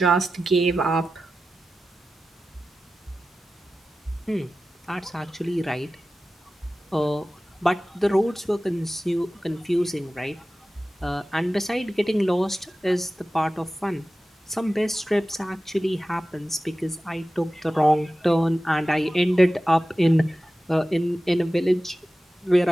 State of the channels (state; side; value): normal; both; correlation 0.94